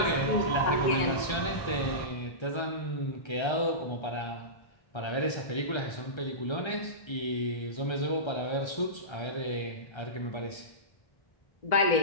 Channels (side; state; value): right; late; 1.3 ms